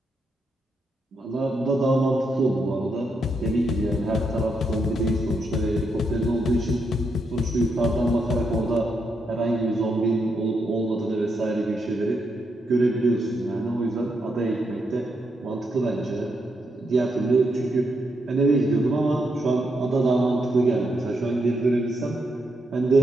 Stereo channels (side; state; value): both; normal; correlation 0.81